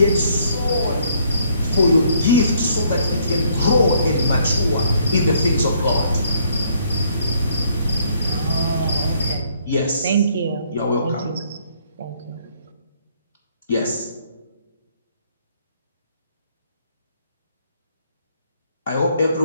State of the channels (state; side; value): inverted; both; correlation -0.67